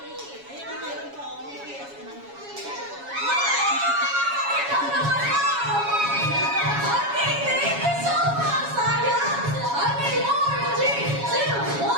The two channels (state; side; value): late; left; 7.2 ms